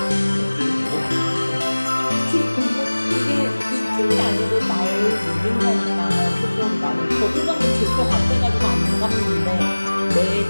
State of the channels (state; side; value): inverted; both; correlation -1.00